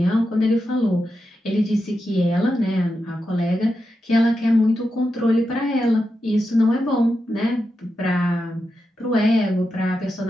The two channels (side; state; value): both; normal; correlation 0.88